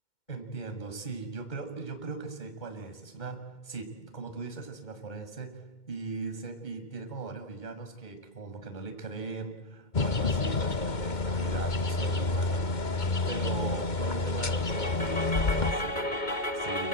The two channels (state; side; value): late; right; 2.2 ms